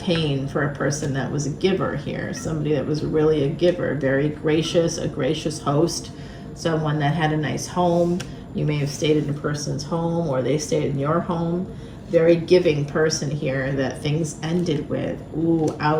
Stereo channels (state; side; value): identical; both; correlation 1.00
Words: pain for a person that was a giver here. Somebody that was really a giver, very gracious, a gracious host, someone that had a nice home. You may have stayed in a person's home, or they stayed in your home. Very giving person here that things ended with. Ooh,